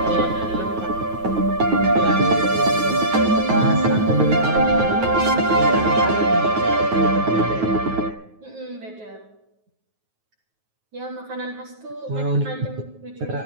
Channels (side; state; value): left; late; 9.3 ms